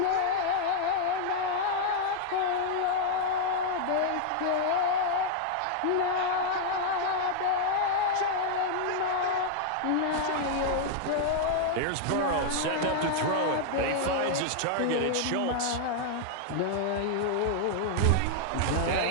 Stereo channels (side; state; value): both; different; correlation 0.00